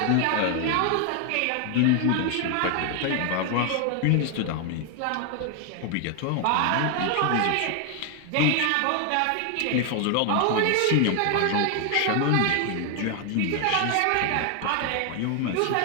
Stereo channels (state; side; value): different; both; correlation 0.00